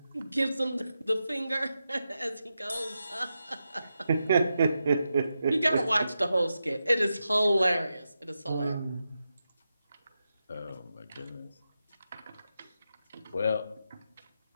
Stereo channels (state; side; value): inverted; both; correlation -0.89